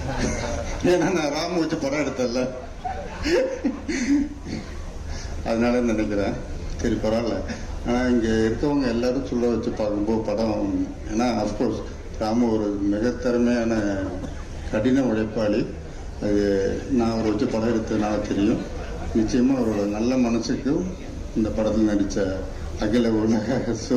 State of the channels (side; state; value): both; identical; correlation 1.00